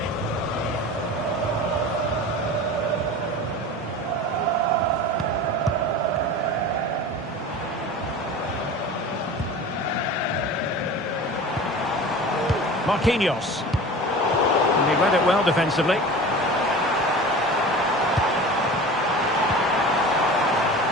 Marquinhos. And he read it well defensively.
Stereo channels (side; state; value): both; normal; correlation 0.36